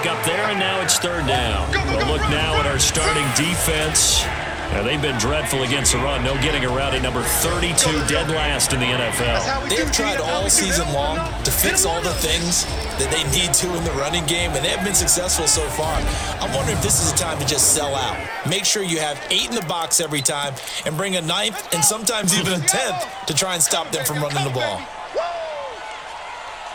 there, and now it's third down. We'll look now at our starting defense. Now, they've been dreadful against the run. No getting around at number 32, dead last in the NFL. They've tried all season long to fix all the things that they need to in the running game, and they have been successful so far. I'm wondering if this is a time to just sell out. Make sure you have 8 in the box every time and bring a 9th and sometimes even a 10th to try and stop them from running the ball.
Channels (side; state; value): both; identical; correlation 1.00